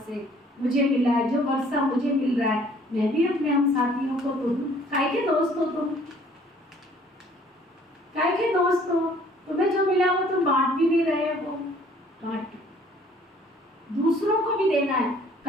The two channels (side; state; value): both; normal; correlation 0.57